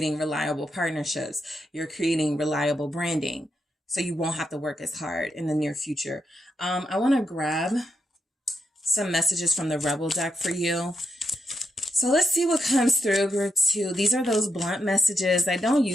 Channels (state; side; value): normal; both; correlation 0.83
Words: reliable partnerships. You're creating reliable branding. So you won't have to work as hard in the near future. I want to grab some messages from the Rebel deck for you. So let's see what comes through, group 2. These are those blunt messages. I don't